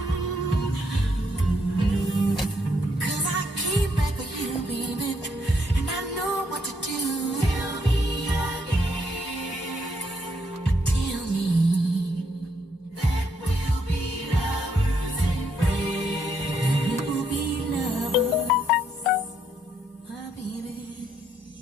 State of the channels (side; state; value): both; normal; correlation 0.74